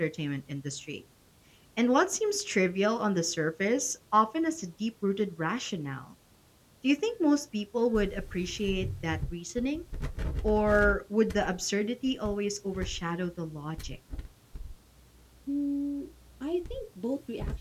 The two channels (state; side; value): identical; both; correlation 1.00